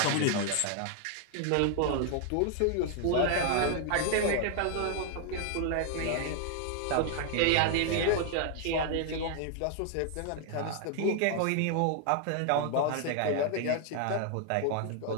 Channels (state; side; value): different; both; correlation 0.00